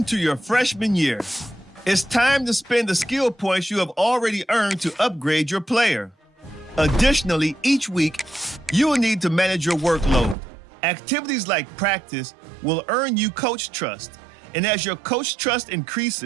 to your freshman year. It's time to spend the skill points you have already earned to upgrade your player. Additionally, each week, you will need to manage your workload. Activities like practice will earn you coach trust. And as your coach trust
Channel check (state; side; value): drops out; left; at 10.4 s